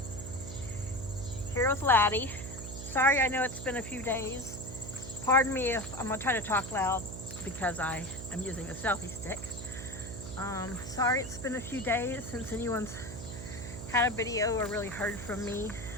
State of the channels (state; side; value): noise; right; hum, 10 dB below the sound